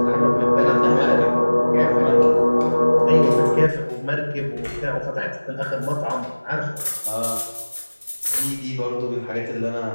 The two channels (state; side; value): inverted; both; correlation -1.00